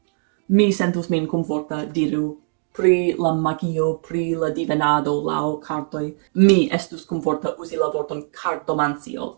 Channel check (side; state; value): left; silent; digital silence